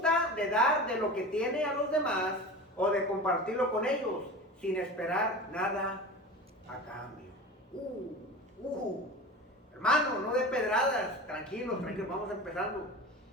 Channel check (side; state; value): both; normal; correlation 0.32